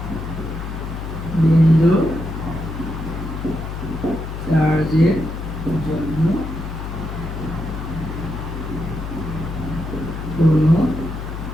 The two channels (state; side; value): noise; left; hum, 6 dB below the sound